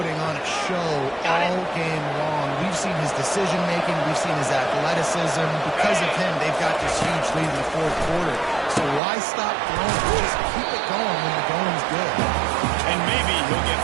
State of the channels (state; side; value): drops out; left; at 9.0 s